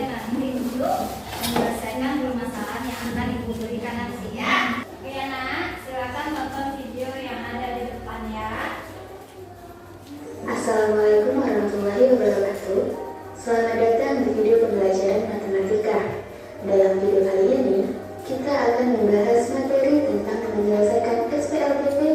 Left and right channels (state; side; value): identical; both; correlation 1.00